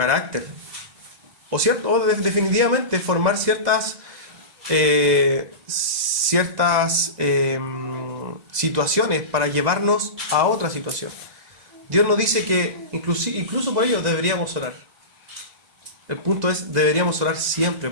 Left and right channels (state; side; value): late; left; 1.9 ms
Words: O definitivamente formar ciertas situaciones para llevarnos a otra situación. Dios nos dice que incluso por ello deberíamos orar. El punto es, deberíamos orar siempre